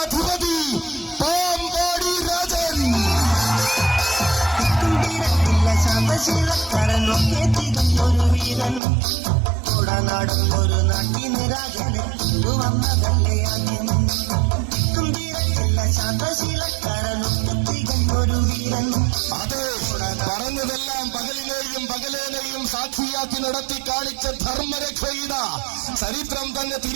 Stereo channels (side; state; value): left; drops out; at 8.8 s